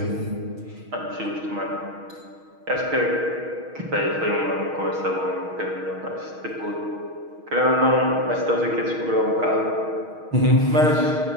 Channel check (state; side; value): late; left; 6.4 ms